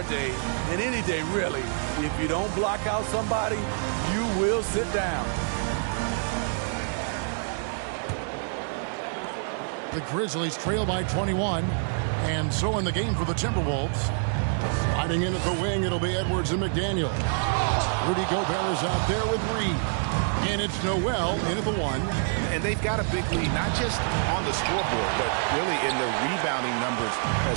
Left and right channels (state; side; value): silent; left; 60 dB below the other